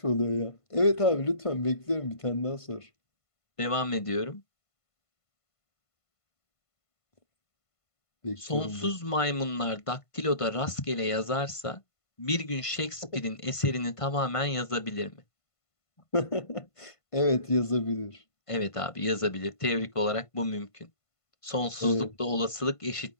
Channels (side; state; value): right; late; 1.5 ms